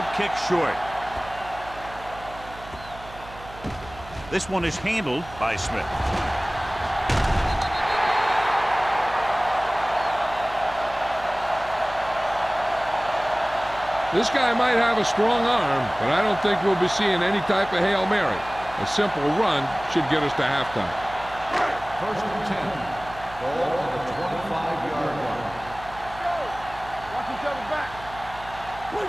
kick short. This one is handled by Smith. This guy might have a strong arm, but I don't think we'll be seeing any type of Hail Mary. A simple run should get us to halftime. First and 10. Ball on the 25-yard line. Watch each other back.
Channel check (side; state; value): right; noise; hum, 17 dB below the sound